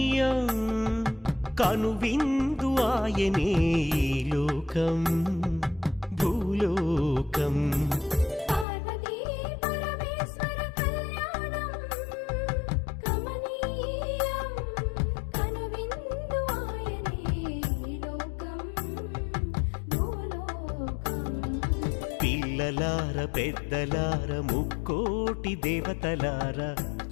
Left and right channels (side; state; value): right; drops out; at 8.7 s